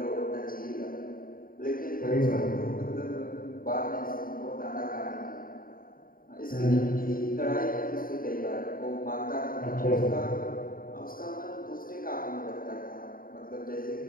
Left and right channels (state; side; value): late; right; 0.41 ms